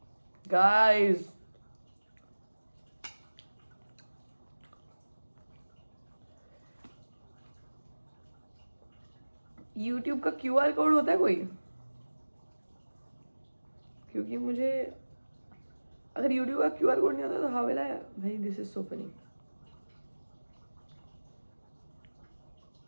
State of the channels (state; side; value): inverted; both; correlation -1.00